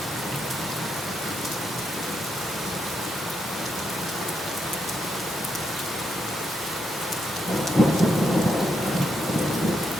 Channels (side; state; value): both; normal; correlation 0.80